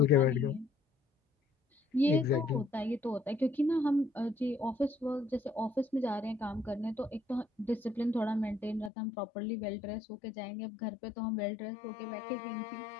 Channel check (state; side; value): drops out; right; at 8.9 s